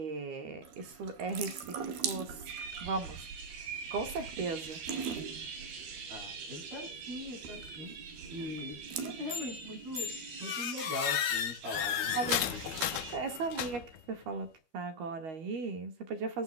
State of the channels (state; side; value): late; left; 12 ms